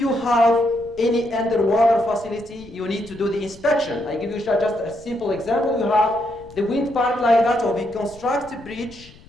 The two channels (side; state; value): left; noise; rumble, 22 dB below the sound